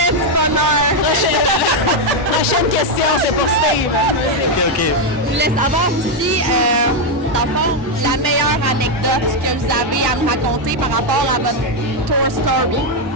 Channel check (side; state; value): both; normal; correlation 0.03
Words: du bonheur. Prochaine question, c'est pour Steve. OK. Je voulais savoir aussi, dans le fond, la meilleure anecdote que vous avez à nous raconter par rapport à votre tour story.